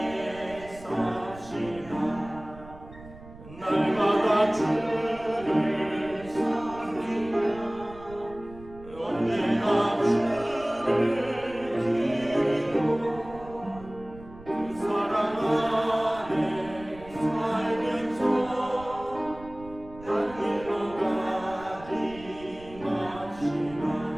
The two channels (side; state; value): right; noise; rumble, 18 dB below the sound